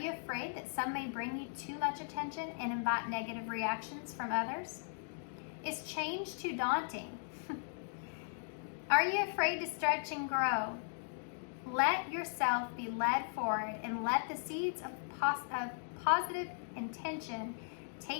afraid that some may bring you too much attention and invite negative reactions from others? Is change too daunting? Are you afraid to stretch and grow? Let yourself be led forward and let the seeds of positive intention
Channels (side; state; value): right; silent; digital silence